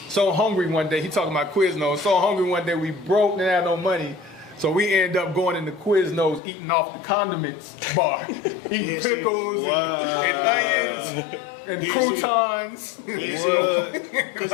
So hungry one day, he talking about Quiznos. So hungry one day, we broke, didn't have no money. So we ended up going into Quiznos, eating off the condiments bar. Eating pickles and onions and croutons. Because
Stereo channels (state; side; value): drops out; right; at 6.4 s